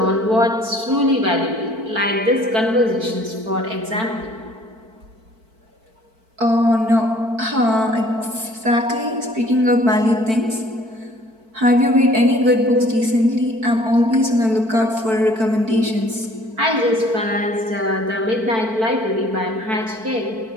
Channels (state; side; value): late; left; 4.5 ms